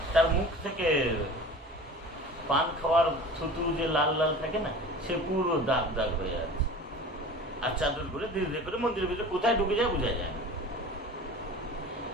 তার মুখ থেকে পান খাওয়ার থুতু যে লাল লাল থাকে না, সে পুরো দাগ দাগ হয়ে আছে। আর চাদর করে ধীরে ধীরে করে মন্দিরের ভিতরে কোথায় ঢুকে যায় বোঝা যায় না।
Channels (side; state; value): both; normal; correlation 0.39